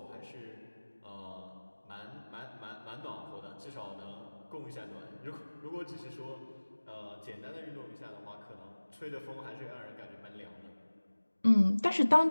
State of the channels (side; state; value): both; inverted; correlation -1.00